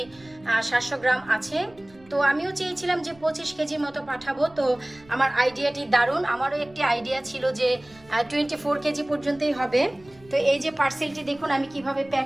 700 গ্রাম আছে। তো আমিও চেয়েছিলাম যে 25 কেজির মতো পাঠাবো। তো আমার আইডিয়াটি দারুণ, আমারও একটি আইডিয়া ছিল যে 24 কেজি পর্যন্তই হবে। তো এই যে পার্সেলটি দেখুন আমি কিভাবে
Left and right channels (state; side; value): noise; right; rumble, 26 dB below the sound